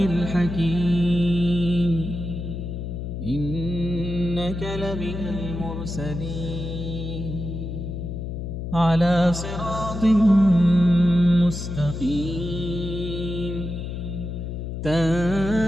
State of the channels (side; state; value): left; noise; hum, 6 dB below the sound